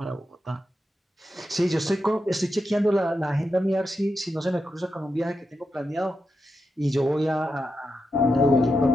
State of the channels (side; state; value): both; normal; correlation 0.87